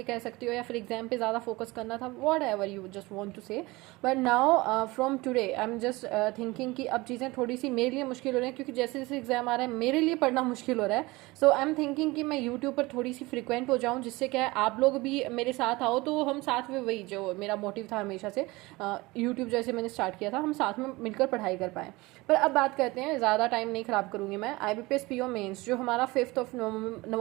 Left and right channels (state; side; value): quieter; left; 21.9 dB